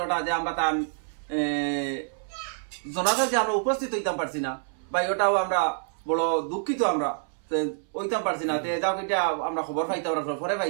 ওটা যে আমরা তার জানাজা যে আমরা উপস্থিত হইতাম পারছি না ভাই ওটাও আমরা বড় দুঃখিত আমরা ওইতাম পারছি না তে যাও এটা আমরা খবর পাইতাম পরে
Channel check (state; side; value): silent; left; 60 dB below the other